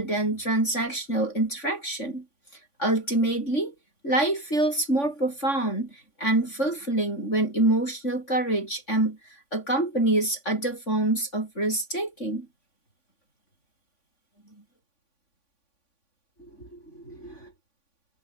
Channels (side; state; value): right; late; 3.5 ms